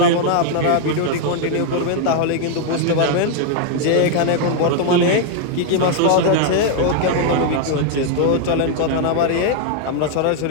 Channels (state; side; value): different; both; correlation 0.00